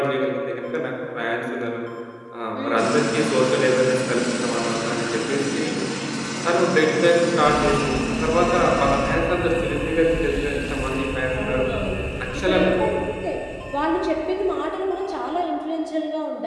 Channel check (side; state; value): both; identical; correlation 1.00